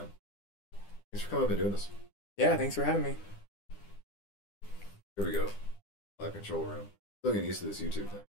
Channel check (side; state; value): right; late; 10 ms